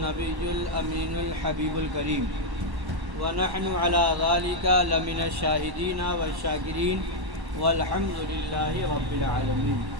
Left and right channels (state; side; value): late; left; 1.1 ms